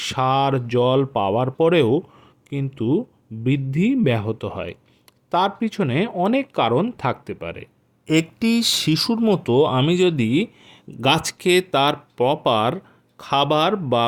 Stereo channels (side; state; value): both; identical; correlation 1.00